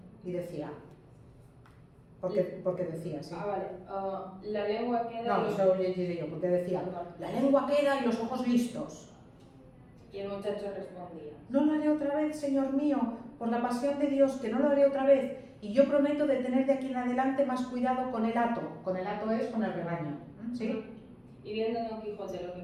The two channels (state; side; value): identical; both; correlation 1.00